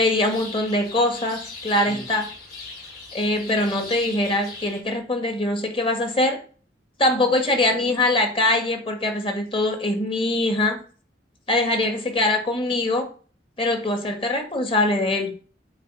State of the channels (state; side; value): normal; both; correlation 0.32